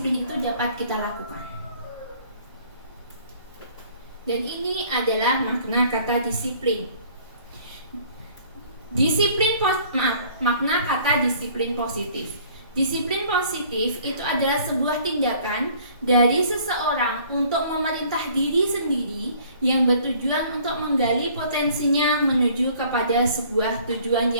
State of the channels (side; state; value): both; inverted; correlation -0.55